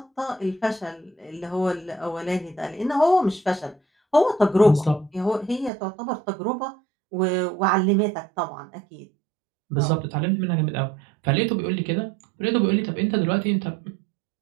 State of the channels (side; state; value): left; drops out; at 5.7 s